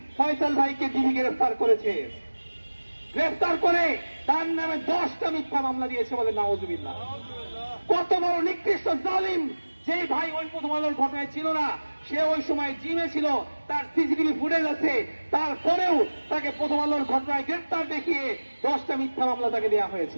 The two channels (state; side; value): inverted; both; correlation -1.00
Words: ফয়সাল ভাইকে ডিবি গ্রেফতার করেছে। গ্রেফতার করে তার নামে 10টা মিথ্যা মামলা দিয়েছে বলে নাউজুবিল্লাহ। কত বড় নিকৃষ্ট জালিম! যে ভাই ওই প্রথম আলোর ঘটনায় ছিল না, সে ওই সময় জিমে ছিল, তার সিসিটিভি ফুটেজ আছে, তারপরেও তাকে প্রথম আলোর ঘটনায় গ্রেফতার দেখিয়ে 10টা মিথ্যা মামলা তাকে দেওয়া